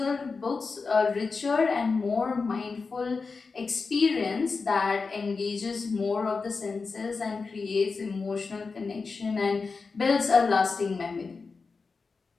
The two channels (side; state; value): right; quieter; 4.5 dB